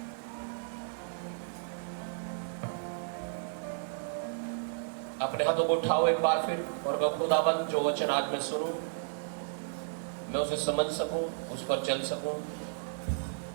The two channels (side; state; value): left; silent; digital silence